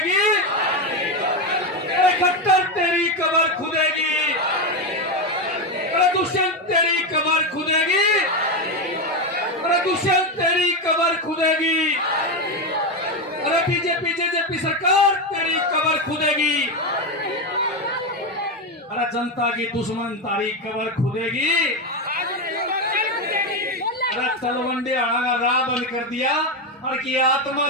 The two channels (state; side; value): normal; both; correlation 0.11